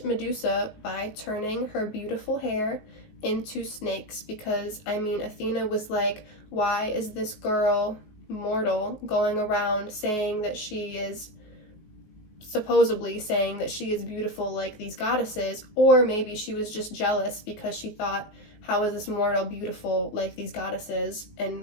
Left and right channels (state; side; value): late; right; 19 ms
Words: Medusa by turning her beautiful hair into snakes because, I mean, Athena was like, why is this girl, mortal, going around saying that she is, supposedly saying that she is beautiful like these goddesses? Or maybe she was just jealous because she thought, how is this mortal beautiful like these goddesses,